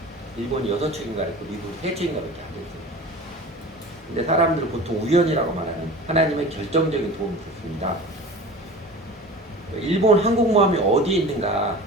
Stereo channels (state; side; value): normal; both; correlation 0.37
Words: 일본이 6척인가 했고 미국이 3척인가 밖에 안 됐어요. 근데 사람들은 보통 우연이라고 말하는 하나님의 결정적인 도움이 있었습니다. 일본 항공모함이 어디에 있는가